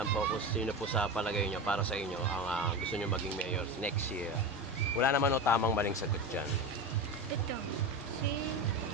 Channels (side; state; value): both; normal; correlation 0.24